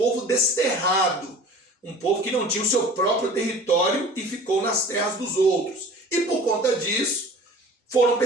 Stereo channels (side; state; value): both; normal; correlation 0.43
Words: desterrado, um povo que não tinha o seu próprio território e ficou nas terras dos outros. E por conta disso, foram